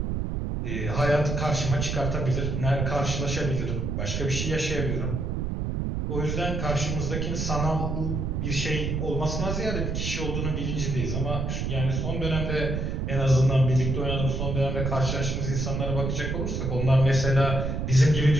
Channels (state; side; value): noise; right; rumble, 1 dB below the sound